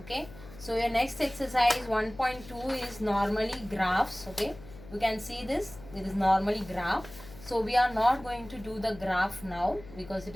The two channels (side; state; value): left; noise; hum, 18 dB below the sound